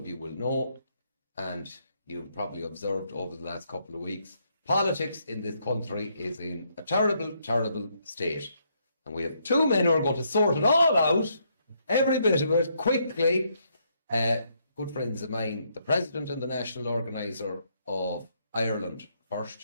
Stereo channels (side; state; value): both; inverted; correlation -0.74